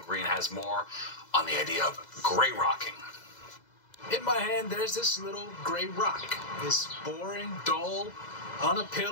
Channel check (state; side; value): late; right; 2.0 ms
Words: Green has more on the idea of gray rocking. In my hand, there's this little gray rock. It's boring, dull,